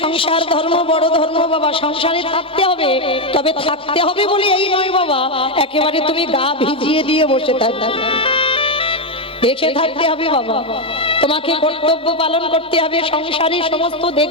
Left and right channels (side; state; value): both; normal; correlation 0.06